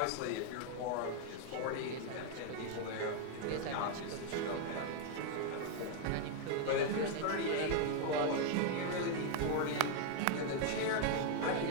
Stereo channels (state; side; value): different; both; correlation 0.00